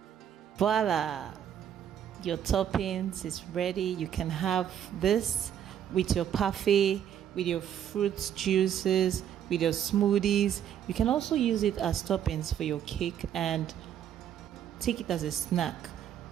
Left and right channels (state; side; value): quieter; left; 9.7 dB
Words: Voila! Your toppings is ready. You can have this with your parfait, with your fruit juices, with your smoothies. You can also use it as toppings for your cake and take it as a snack.